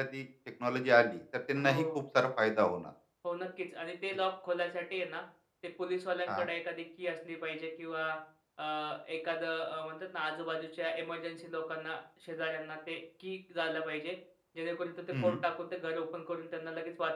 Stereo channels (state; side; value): identical; both; correlation 1.00